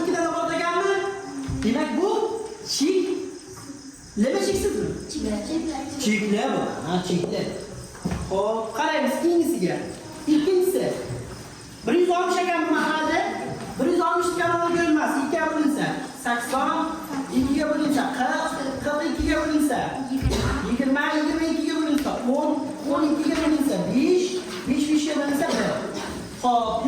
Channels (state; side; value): identical; both; correlation 1.00